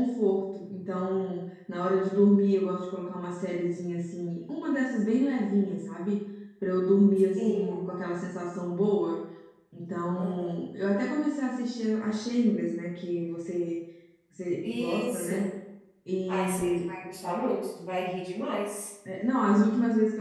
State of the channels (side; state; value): both; identical; correlation 1.00